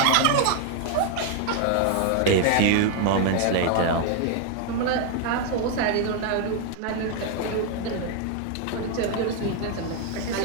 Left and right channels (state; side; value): different; both; correlation 0.00